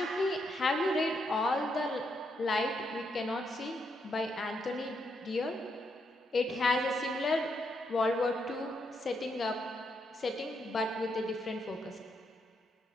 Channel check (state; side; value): normal; both; correlation 0.79